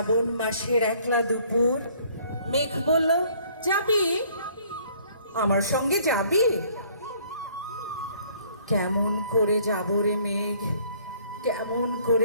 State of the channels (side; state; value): both; inverted; correlation -0.59